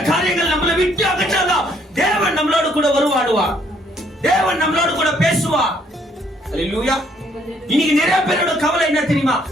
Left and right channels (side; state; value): both; normal; correlation 0.67